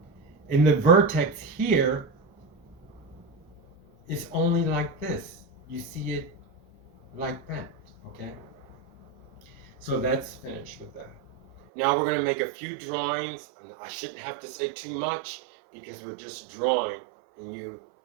And the vertex here is only like this. You see it like that, okay? So that's finished with that. Now we're going to make a few drawings. I shouldn't have to say too much because we're just drawing and you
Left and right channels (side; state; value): left; drops out; at 11.6 s